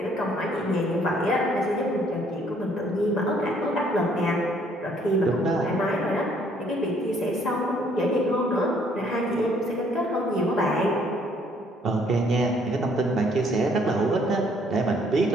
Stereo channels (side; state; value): both; normal; correlation 0.64